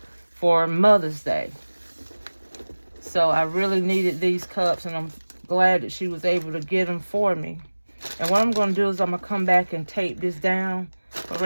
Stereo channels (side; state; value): both; inverted; correlation -1.00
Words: for Mother's Day. So I really needed these cups, and I'm glad that she was able to get them for me. And what I'm going to do is I'm going to come back and tape this down. But